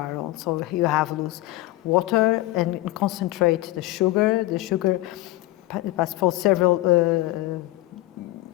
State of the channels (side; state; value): right; quieter; 17.5 dB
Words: So you have loose water and concentrate the sugar. The sugar passed for several In